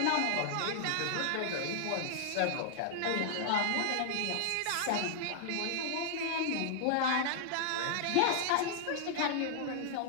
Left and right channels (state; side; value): different; both; correlation -0.01